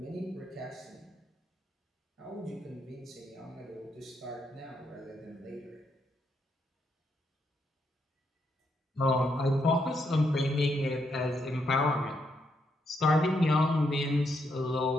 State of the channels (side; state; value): both; normal; correlation 0.78